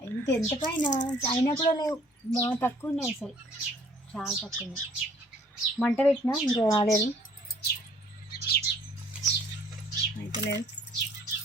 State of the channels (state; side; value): normal; both; correlation 0.57